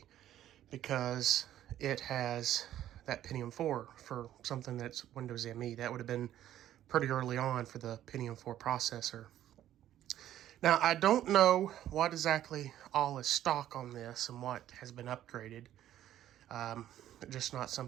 because it has that Pentium 4 for something that's Windows ME. That would have been pretty early on for the Pentium 4 processor. Now, I don't know what exactly all is stock on this and what has been upgraded. Just not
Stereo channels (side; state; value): left; quieter; 12.2 dB